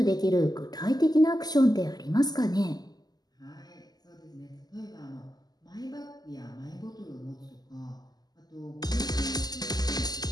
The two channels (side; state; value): right; late; 0.20 ms